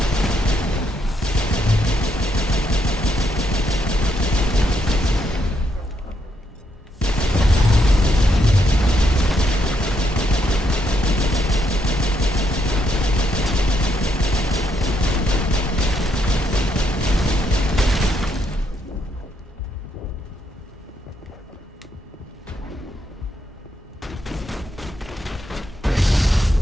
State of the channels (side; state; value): both; normal; correlation 0.77